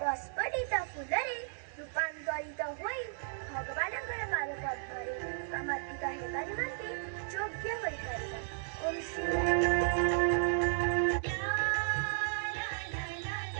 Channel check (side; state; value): left; silent; digital silence